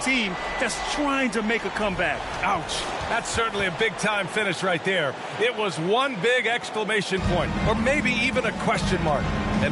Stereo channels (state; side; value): identical; both; correlation 1.00